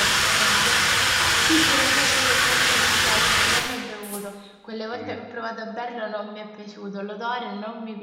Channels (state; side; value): identical; both; correlation 1.00